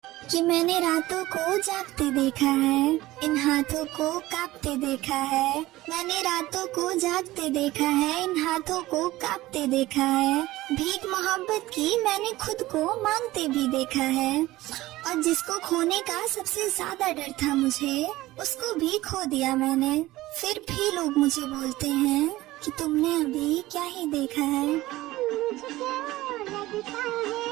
कि मैंने रातों को जागते देखा है, इन हाथों को कांपते देखा है। मैंने रातों को जागते देखा है, इन हाथों को कांपते देखा है। भीख मोहब्बत की मैंने खुद को मांगते भी देखा है, और जिसको खोने का सबसे ज्यादा डर था मुझे, उसको भी खो दिया मैंने। फिर भी लोग मुझे बोलते हैं कि तुमने अभी क्या ही देखा है।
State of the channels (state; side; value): quieter; left; 17.5 dB